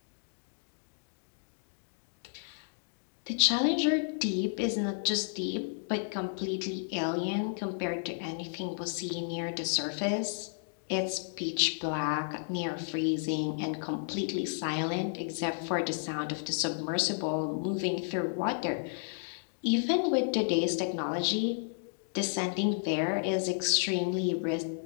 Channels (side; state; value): right; silent; digital silence